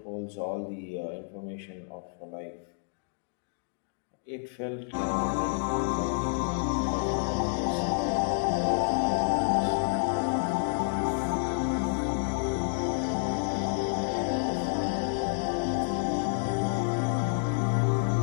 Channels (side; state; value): right; silent; digital silence